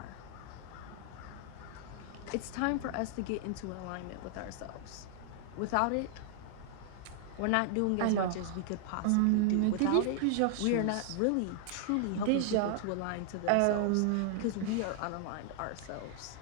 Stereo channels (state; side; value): different; both; correlation 0.00